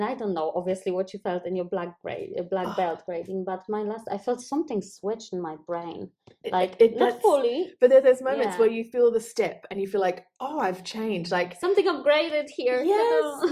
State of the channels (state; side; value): identical; both; correlation 1.00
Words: I don't know obviously what you felt in your black belt grading, but I felt something switched in my brain, like not fully, but there's moments where you feel the step and you feel like, oh, I've changed, like something upgraded here.